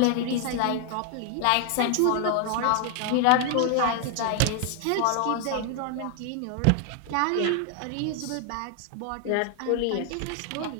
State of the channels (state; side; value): different; both; correlation 0.00